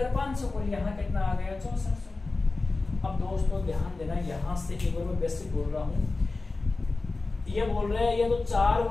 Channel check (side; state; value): right; quieter; 3.5 dB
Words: और यहाँ कितना आ गया? 6400। अब दोस्तों ध्यान देना, यहाँ से एक बार मैं बेसिक बोल रहा हूँ। ये बोल रहे हैं, ये तो 4